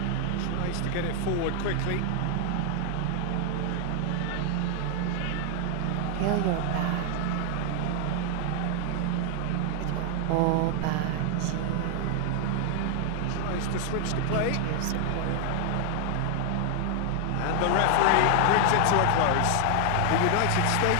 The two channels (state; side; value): different; both; correlation 0.00